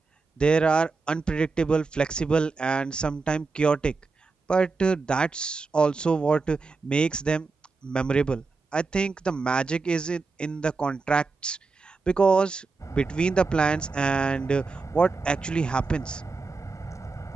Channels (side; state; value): left; quieter; 4.2 dB